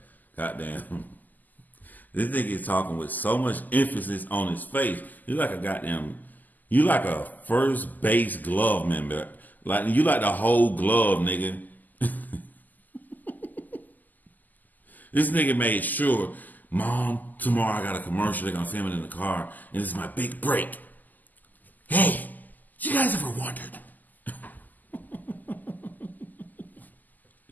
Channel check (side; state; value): right; late; 0.084 ms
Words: Goddamn. This nigga is talking with so much emphasis on his face. You like a first base glove member. Like you like the whole glove, nigga. This nigga made sure, Mom, tomorrow I got a commercial. They're gonna film it in the car, and this is my big break. Hey, you guys ever wondered?